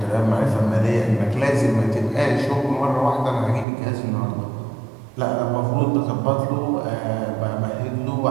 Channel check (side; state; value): left; drops out; at 3.7 s